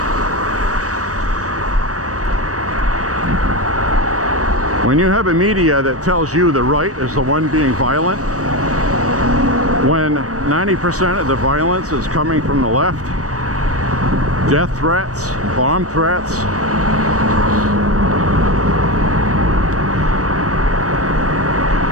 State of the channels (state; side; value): late; left; 0.66 ms